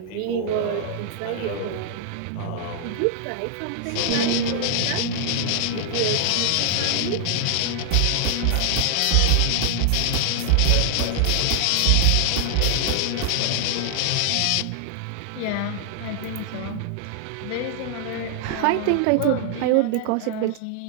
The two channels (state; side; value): different; both; correlation 0.00